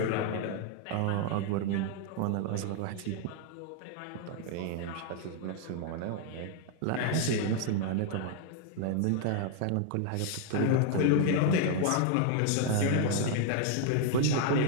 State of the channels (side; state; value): both; different; correlation 0.00